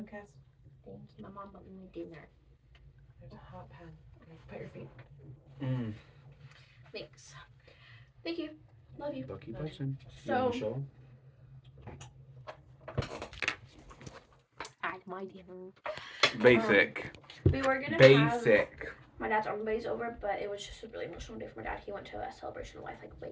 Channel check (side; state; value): both; identical; correlation 1.00